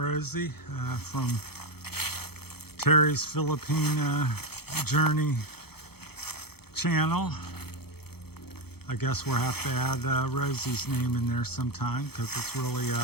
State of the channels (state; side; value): late; right; 0.96 ms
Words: from Terry's Philippine Journey channel. I guess we'll have to add Rosie's name in there sometime because it's really